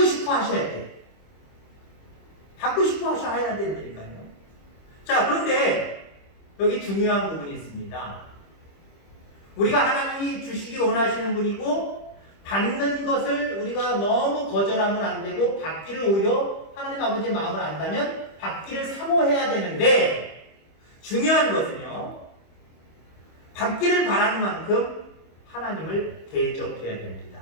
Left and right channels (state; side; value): late; right; 25 ms